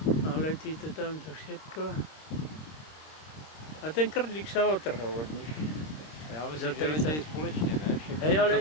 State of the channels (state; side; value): late; right; 26 ms